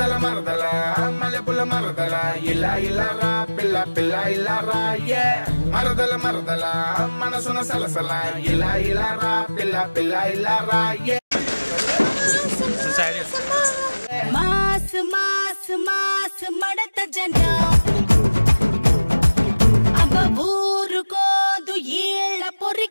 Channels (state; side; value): inverted; both; correlation -1.00